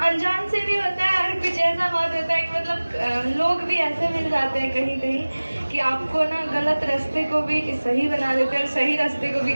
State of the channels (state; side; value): inverted; both; correlation -1.00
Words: अनजान से भी होता है। और कुछ ऐसा बात होता है कि मतलब लोग भी ऐसे मिल जाते हैं कहीं कहीं कि आपको ना गलत रास्ते को भी सही बना देते हैं और सही रास्ते को भी